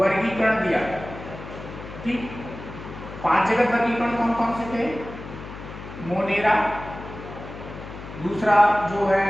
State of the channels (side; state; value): left; noise; hum, 12 dB below the sound